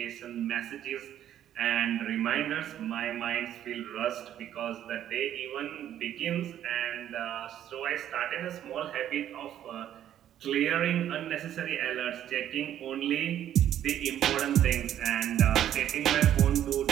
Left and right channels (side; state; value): left; quieter; 11.0 dB